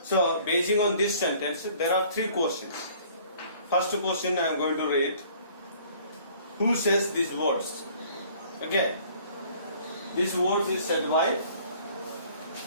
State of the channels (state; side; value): inverted; both; correlation -0.54